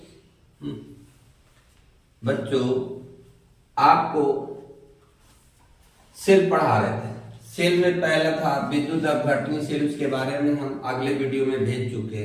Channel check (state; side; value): identical; both; correlation 1.00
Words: आपको सेल पढ़ा रहे थे। सेल में पहला था विद्युत अपघटनी सेल, उसके बारे में हम अगले वीडियो में भेज चुके